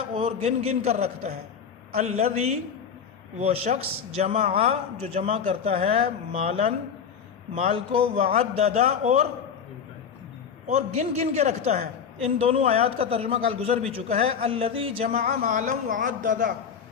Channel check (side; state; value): right; quieter; 7.1 dB